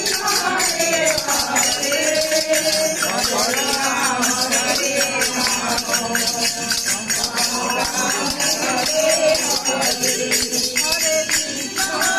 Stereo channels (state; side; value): identical; both; correlation 1.00